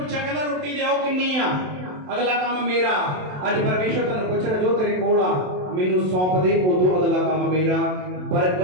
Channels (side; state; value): left; late; 27 ms